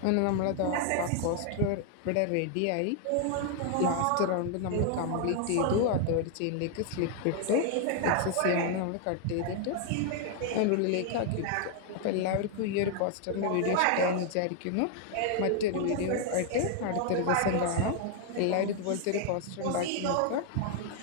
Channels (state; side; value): different; both; correlation 0.00